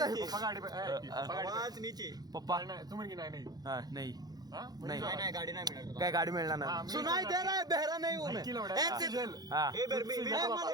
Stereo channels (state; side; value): late; left; 0.19 ms